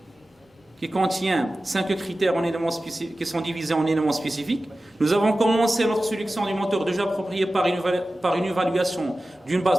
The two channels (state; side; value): normal; both; correlation 0.95